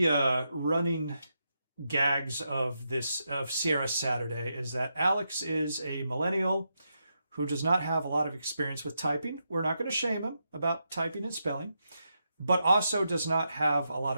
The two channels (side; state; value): both; inverted; correlation -0.84